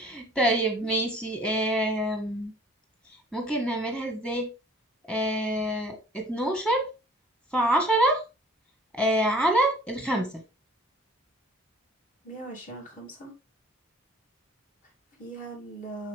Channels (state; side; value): normal; both; correlation 0.52